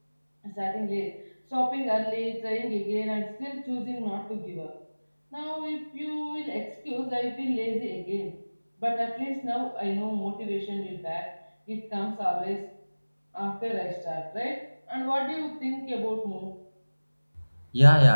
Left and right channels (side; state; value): both; inverted; correlation -1.00